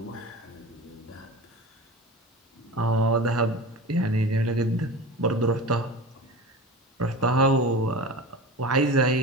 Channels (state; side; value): normal; both; correlation 0.31